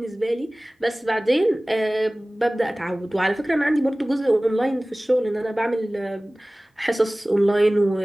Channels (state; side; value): normal; both; correlation 0.98